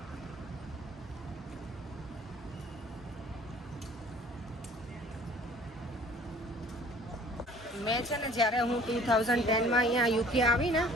મેં છે ને જ્યારે હું 2010માં અહીંયા યુકે આવી ને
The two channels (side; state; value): both; normal; correlation 0.51